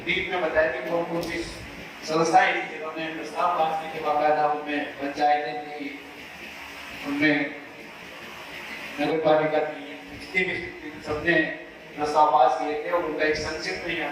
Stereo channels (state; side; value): identical; both; correlation 1.00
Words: डीप में बताया कि कौन कौन सी संस्थाएं थी जिन्होंने प्रस्ताव पास किए थे, बाकायदा उनमें पंचायतें थी, उनमें नगरपालिका थी, जितने भी सबने प्रस्ताव पास किए थे और उनका एक संक्षिप्त में यहाँ